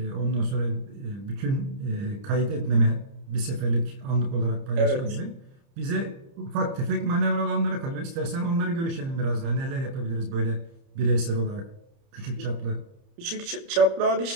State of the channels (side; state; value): left; late; 30 ms